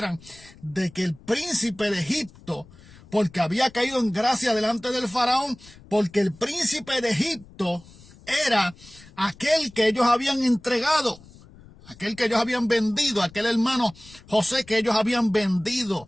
de que el príncipe de Egipto, porque había caído en gracia delante del faraón, porque el príncipe de Egipto era aquel que ellos habían entregado, aquel que ellos habían vendido, aquel hermano José que ellos habían vendido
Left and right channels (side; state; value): left; noise; rumble, 23 dB below the sound